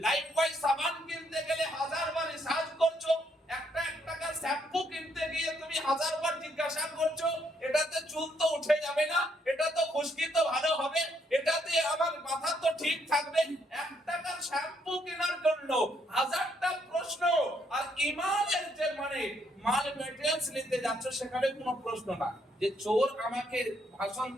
লাইফবয় সাবান কিনতে গেলে 1000 বার রিসার্চ করছো, একটা টাকার শ্যাম্পু কিনতে গিয়ে তুমি 1000 বার জিজ্ঞাসা করছো এটাতে চুল তো উঠে যাবে না, এটা তো খুশকি তো ভালো হবে, এটাতে আমার মাথা তো ঠিক থাকবে, 1 টাকার শ্যাম্পু কেনার জন্য 1000টা প্রশ্ন। আর ঈমানের যে মানে মাল মেটেরিয়ালস নিতে যাচ্ছ সেখানে কোনো প্রশ্ন না যে চোর আমাকে ভাষণ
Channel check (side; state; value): both; normal; correlation 0.72